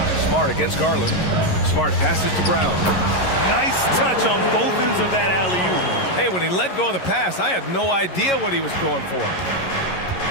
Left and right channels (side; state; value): right; late; 11 ms